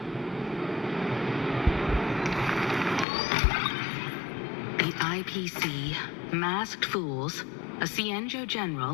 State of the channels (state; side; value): drops out; right; at 3.1 s